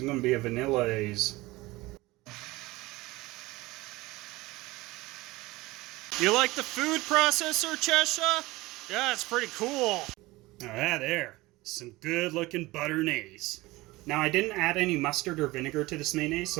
gonna be a vanilla-aise. You like the food processor, Cheshire? Yeah, it's pretty cool. Ah, there. Some good looking butter-naise. Now I didn't add any mustard or vinegar to this mayonnaise,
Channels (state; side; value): quieter; left; 20.3 dB